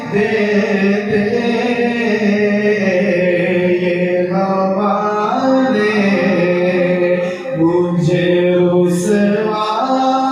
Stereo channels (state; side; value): identical; both; correlation 1.00